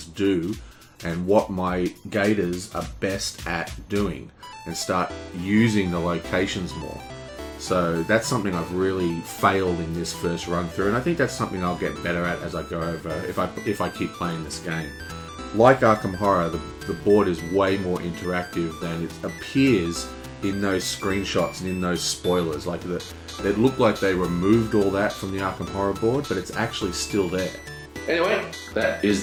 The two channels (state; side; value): identical; both; correlation 1.00